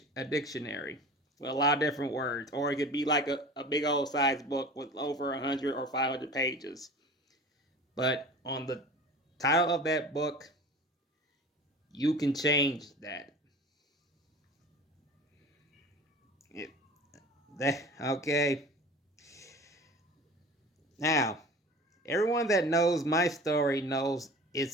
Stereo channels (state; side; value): normal; both; correlation 0.39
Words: dictionary with a lot of different words, or it could be like a big old size book with over 100 or 500 pages. But on the title of that book, you can change that. Okay. Now, everyone that knows my story knows